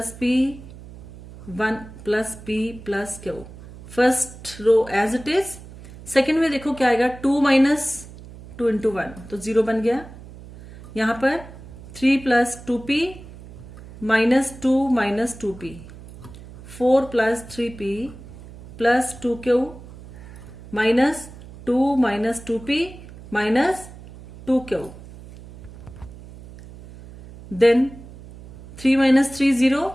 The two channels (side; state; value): right; noise; hum, 17 dB below the sound